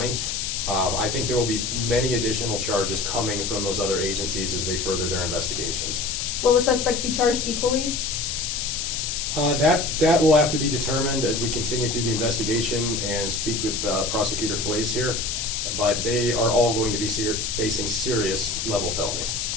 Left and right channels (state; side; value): noise; left; hiss, 2 dB below the sound